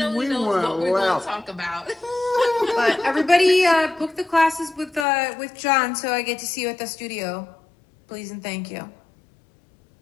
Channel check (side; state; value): right; drops out; at 5.1 s